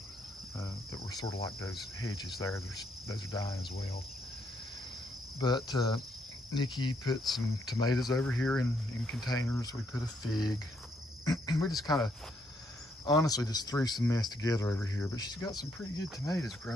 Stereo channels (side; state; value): both; normal; correlation 0.74